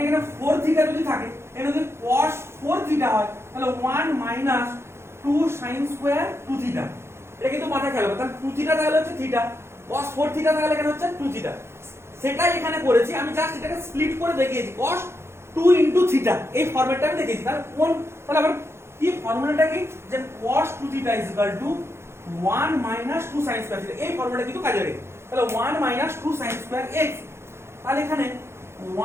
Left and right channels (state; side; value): late; left; 0.12 ms